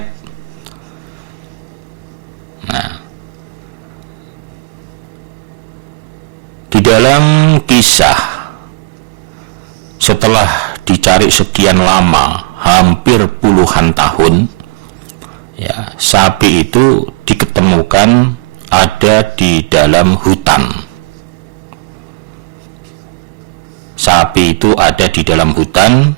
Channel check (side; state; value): left; quieter; 25.6 dB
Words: Nah, di dalam kisah setelah dicari sekian lama, hampir puluhan tahun, ya, sapi itu diketemukan ada di dalam hutan. Sapi itu ada di dalam hutan,